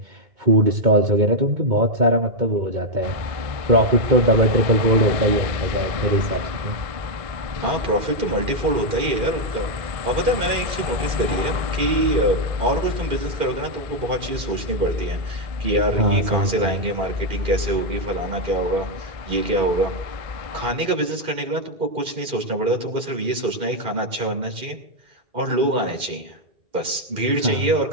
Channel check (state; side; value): late; left; 2.4 ms